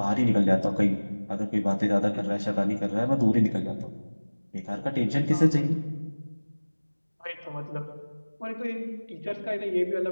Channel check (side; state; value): both; inverted; correlation -1.00